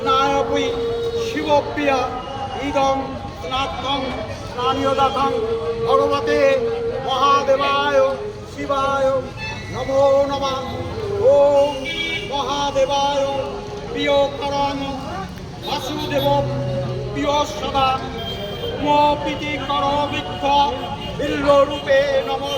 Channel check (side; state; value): both; identical; correlation 1.00